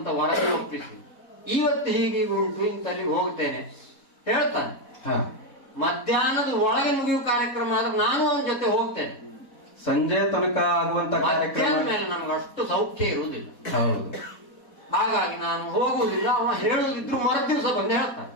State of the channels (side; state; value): right; late; 4.1 ms